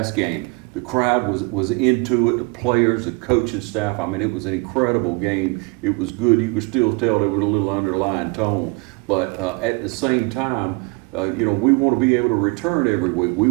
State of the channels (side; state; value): left; quieter; 28.8 dB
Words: game, the crowd was into it, the players, the coaching staff. I mean, it was an incredible game. It was good. You could still tell there was a little underlying tone. But at the same time, you know, we want to be able to return every week. We